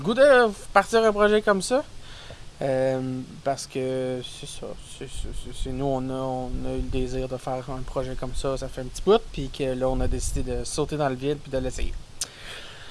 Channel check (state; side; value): identical; both; correlation 1.00